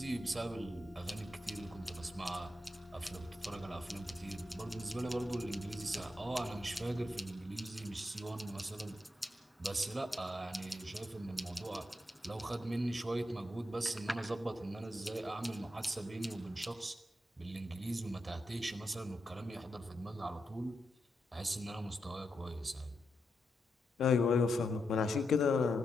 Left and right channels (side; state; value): both; normal; correlation 0.85